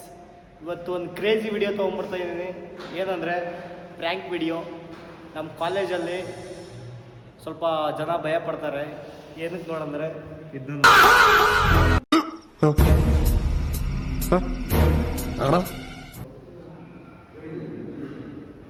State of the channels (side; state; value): both; identical; correlation 1.00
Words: ಇವತ್ತು ಒಂದು ಕ್ರೇಜಿ ವಿಡಿಯೋ ತೊಗೊಂಬರ್ತಾ ಇದ್ದೀನಿ. ಏನಂದರೆ ಪ್ರ್ಯಾಂಕ್ ವಿಡಿಯೋ. ನಮ್ಮ ಕಾಲೇಜಲ್ಲಿ ಸ್ವಲ್ಪ ಜನ ಭಯ ಪಡ್ತಾರೆ. ಏನಕ್ಕೆ ನೋಡಂದರೆ ಇದನ್ನು